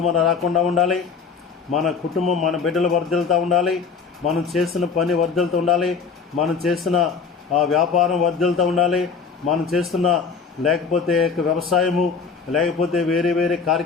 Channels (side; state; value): right; quieter; 5.5 dB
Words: మనం రాకుండా ఉండాలి. మన కుటుంబం, మన బిడ్డలు వర్ధిల్లుతూ ఉండాలి. మనం చేసిన పని వర్ధిల్లుతూ ఉండాలి. మనం చేసిన వ్యాపారం వర్ధిల్లుతూ ఉండాలి. మనం చేస్తున్న లేకపోతే వ్యవసాయము, లేకపోతే వేరే వేరే